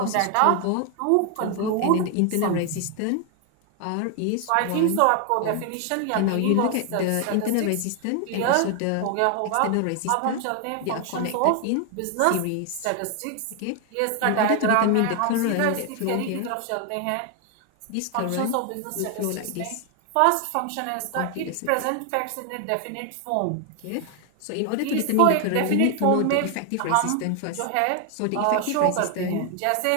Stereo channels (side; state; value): both; different; correlation 0.00